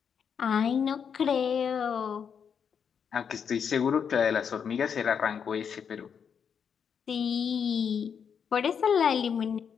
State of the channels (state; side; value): quieter; right; 7.1 dB